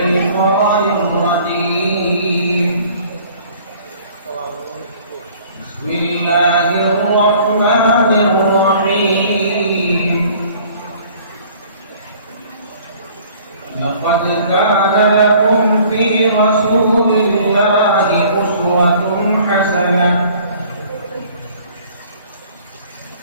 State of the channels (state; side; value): inverted; both; correlation -0.53